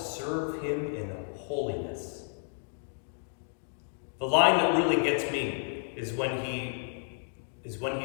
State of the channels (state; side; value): silent; right; digital silence